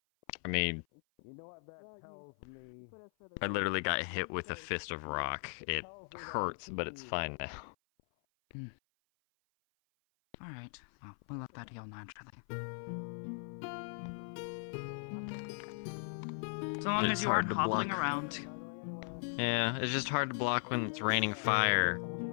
I mean, I literally got hit with a fist of rock. It hurts, but it's fine now. Alright, well, we'll let that heal naturally. So long It's as you aren't hard to hobbling block. around. Yeah, it's just hard to block when it's raining fire,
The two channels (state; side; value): silent; right; 53 dB below the other